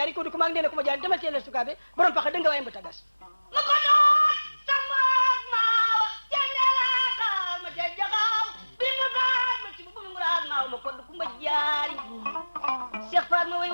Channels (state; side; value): inverted; both; correlation -1.00